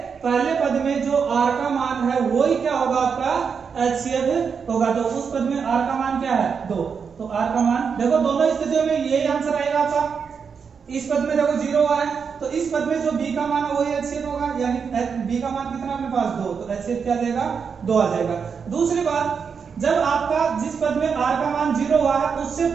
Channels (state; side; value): quieter; left; 6.1 dB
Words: पहले पद में जो r का मान है वही क्या होगा, आपका HCF होगा। तो उस पद में r का मान क्या है 2, तो r का मान देखो दोनों स्थितियों में यही आंसर आएगा आपका। इस पद में देखो 0 हुआ है, तो इस पद में जो b का मान है वही HCF होगा, यानी b का मान कितना अपने पास 2, तो HCF क्या आ जाएगा 2 आ जाएगा। दूसरी बात, जब आपका जिस पद में r का मान 0 हुआ है, उससे